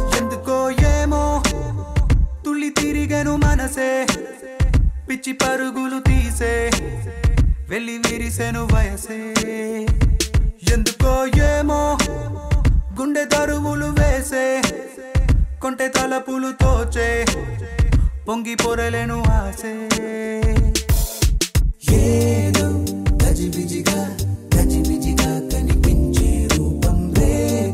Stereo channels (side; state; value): both; identical; correlation 1.00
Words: ఎందుకో ఏమో తుళ్ళి తిరిగెను మనసే పిచ్చి పరుగులు తీసే వెళ్ళి విరిసెను వయసే ఎందుకో ఏమో గుండె దరువులు వేసే కొంటె తలపులు తోచే పొంగి పొరలేను ఆసే ఏదో గజిబిజిగా కనిపించే రూపం